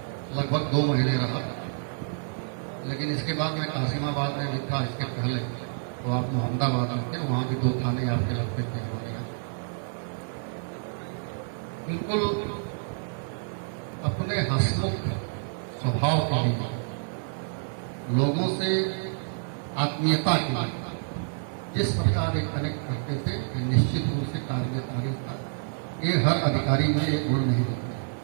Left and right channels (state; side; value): silent; left; digital silence